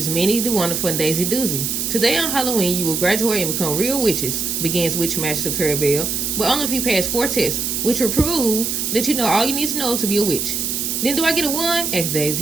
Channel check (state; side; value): noise; right; hiss, 1 dB below the sound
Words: Minnie the Wonderful and Daisy Doozy. Today on Halloween, you will graduate and become real witches, begins Witchmaster Clarabelle, but only if you pass 4 tests, which will prove that you know all you need to know to be a witch. Then do I get a 1? Asks